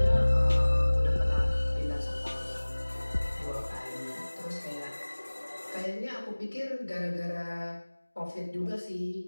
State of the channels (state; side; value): inverted; both; correlation -1.00